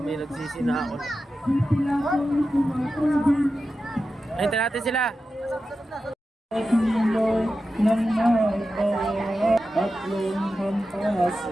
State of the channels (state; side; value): normal; both; correlation 0.92